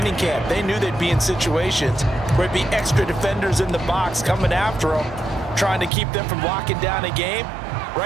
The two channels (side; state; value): left; drops out; at 5.9 s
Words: camp. They knew they'd be in situations where there'd be extra defenders in the box coming after them, trying to keep them from locking down a game.